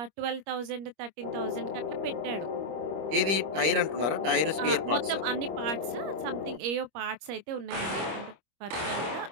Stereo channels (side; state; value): left; late; 25 ms